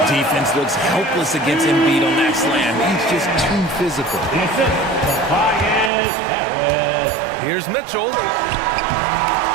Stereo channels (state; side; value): drops out; left; at 5.9 s